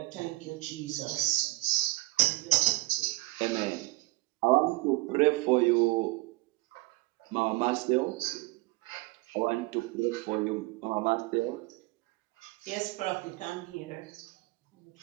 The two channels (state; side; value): quieter; left; 21.5 dB